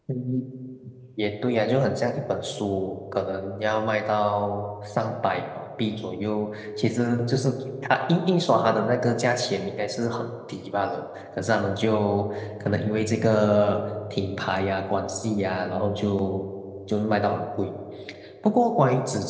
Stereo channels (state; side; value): identical; both; correlation 1.00